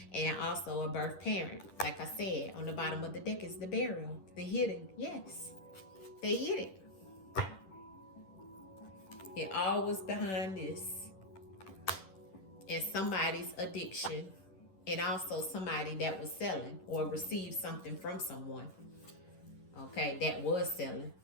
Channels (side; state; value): right; late; 10 ms